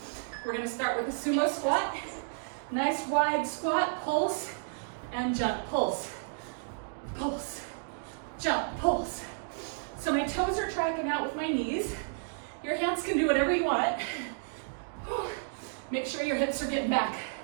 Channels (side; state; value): left; silent; digital silence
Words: We're going to start with a sumo squat. Nice wide squat, pulse, and jump, pulse, pulse, jump, pulse, So my toes are tracking out with my knees. Your hands can do whatever you want. Make sure your hips are getting back.